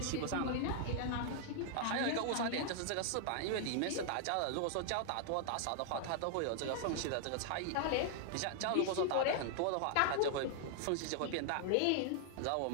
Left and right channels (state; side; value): different; both; correlation 0.00